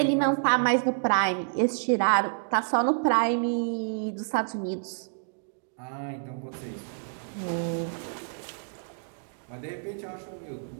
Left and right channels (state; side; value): silent; left; digital silence